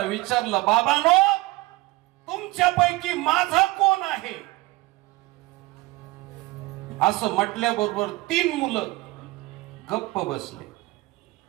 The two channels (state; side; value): quieter; left; 20.7 dB